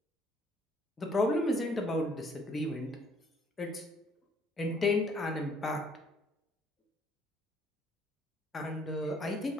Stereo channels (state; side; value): normal; both; correlation 0.63